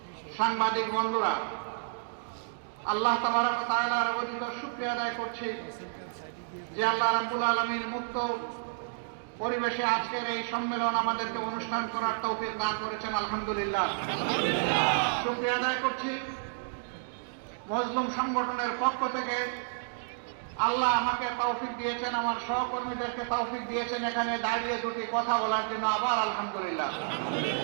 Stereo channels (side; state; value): left; silent; digital silence